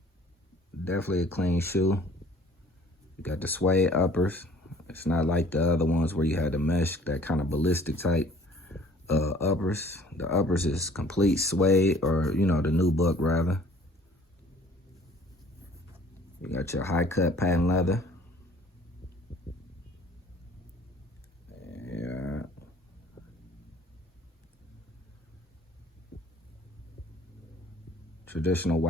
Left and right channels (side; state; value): both; normal; correlation 0.54